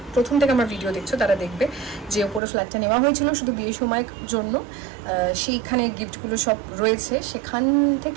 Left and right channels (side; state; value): left; drops out; at 2.4 s